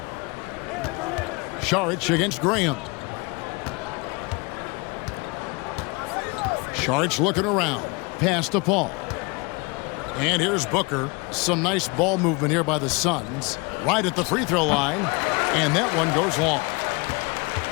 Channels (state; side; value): quieter; right; 27.9 dB